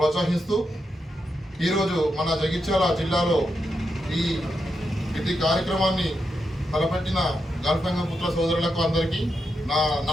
ఈరోజు మన జగిత్యాల జిల్లాలో ఇటు కార్యక్రమాన్ని తలపెట్టిన గల్ఫ్ గంగపుత్ర సోదరులకు అందరికీ నా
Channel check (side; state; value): both; normal; correlation 0.85